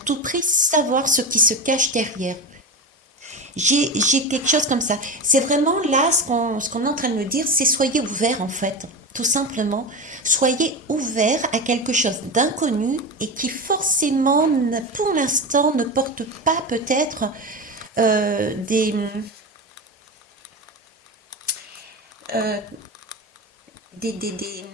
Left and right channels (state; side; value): normal; both; correlation 0.22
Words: prix savoir ce qui se cache derrière. J'ai quelque chose comme ça. C'est vraiment là ce qu'on est en train de me dire, c'est soyez ouverts en fait. Tout simplement, soyez ouverts à quelque chose d'inconnu et qui forcément, pour l'instant, ne porte pas peut-être des, euh, des, des, des,